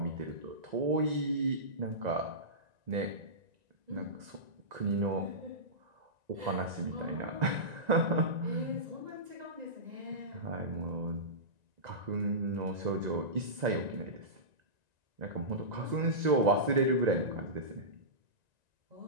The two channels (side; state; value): left; late; 1.9 ms